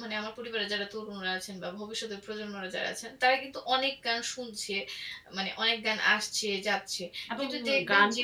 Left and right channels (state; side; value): identical; both; correlation 1.00